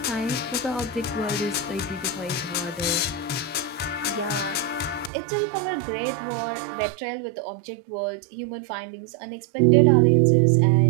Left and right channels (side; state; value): left; drops out; at 5.1 s